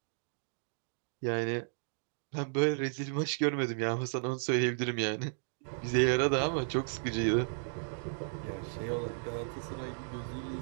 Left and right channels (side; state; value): left; silent; digital silence